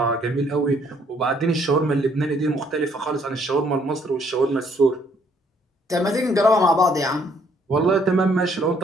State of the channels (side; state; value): both; normal; correlation 0.66